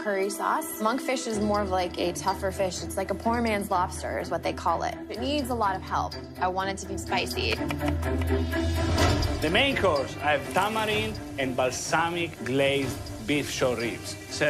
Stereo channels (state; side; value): identical; both; correlation 1.00